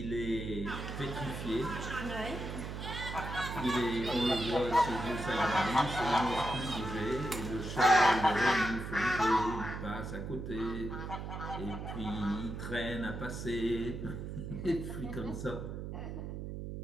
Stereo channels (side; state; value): right; noise; hum, 6 dB below the sound